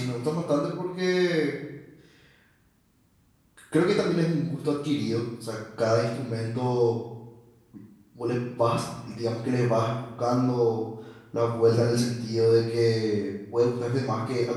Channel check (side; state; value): both; identical; correlation 1.00